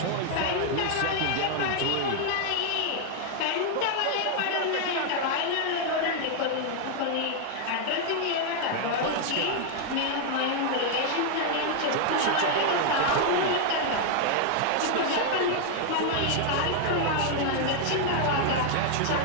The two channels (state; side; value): different; both; correlation 0.00